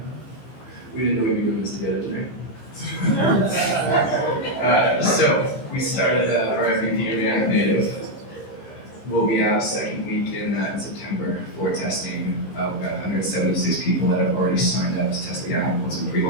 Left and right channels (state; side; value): late; right; 15 ms